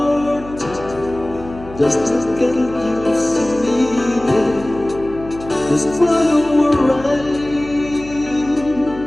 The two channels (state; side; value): noise; left; hum, 16 dB below the sound